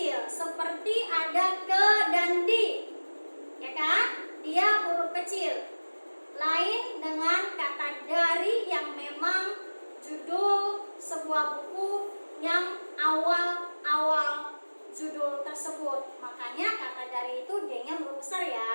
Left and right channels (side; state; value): both; inverted; correlation -1.00